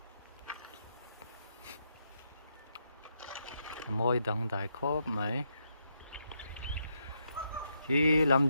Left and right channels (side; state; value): both; inverted; correlation -0.80